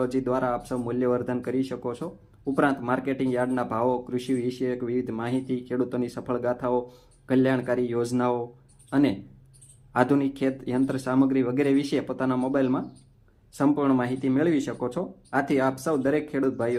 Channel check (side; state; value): both; identical; correlation 1.00